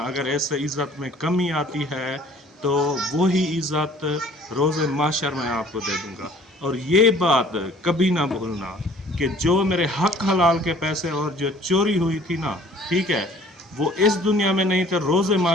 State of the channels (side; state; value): both; normal; correlation 0.53